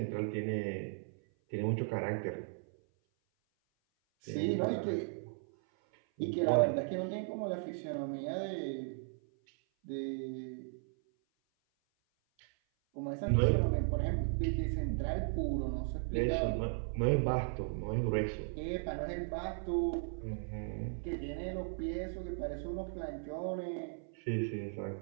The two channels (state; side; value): silent; left; 53 dB below the other